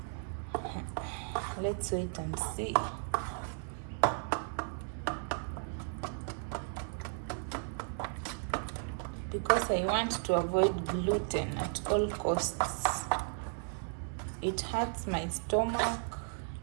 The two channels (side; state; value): left; silent; 55 dB below the other